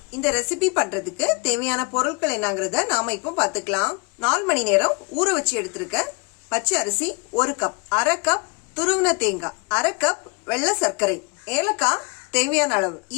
இந்த ரெசிபி பண்றதுக்கு தேவையான பொருட்கள் என்னங்கிறத நாம இப்போ பார்த்துக்கலாம். 4 மணி நேரம் ஊற வச்சு எடுத்திருக்க பச்சை அரிசி 1 கப், 1/2 கப் துருவின தேங்காய், 1/2 கப் வெள்ளை சர்க்கரை, ஏலக்காய் தேவையான அளவு,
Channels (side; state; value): right; quieter; 31.9 dB